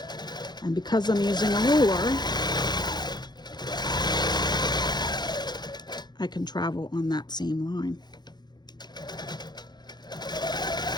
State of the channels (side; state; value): right; late; 0.21 ms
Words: And because I'm using a ruler, I can travel on that same line.